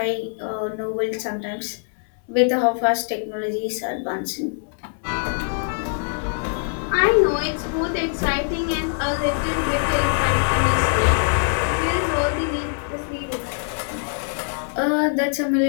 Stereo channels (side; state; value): right; silent; digital silence